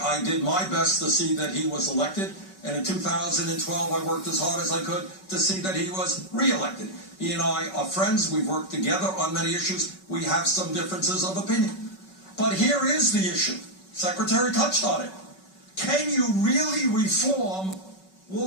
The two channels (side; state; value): right; late; 5.3 ms